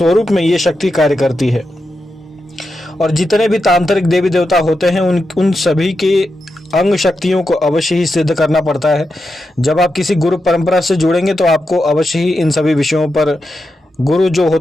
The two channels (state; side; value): normal; both; correlation 0.88